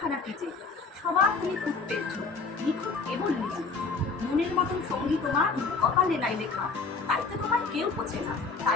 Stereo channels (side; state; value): right; quieter; 4.5 dB